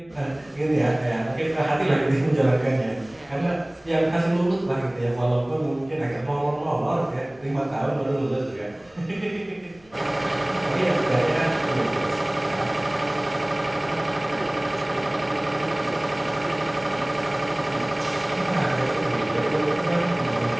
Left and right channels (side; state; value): left; noise; rumble, 30 dB below the sound